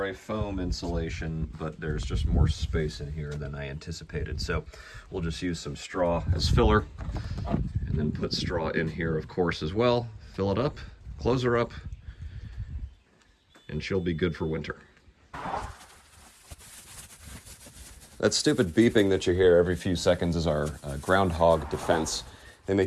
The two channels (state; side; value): identical; both; correlation 1.00